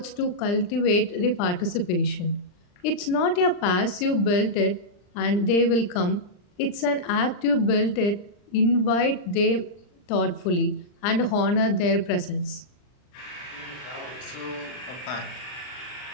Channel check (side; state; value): right; late; 39 ms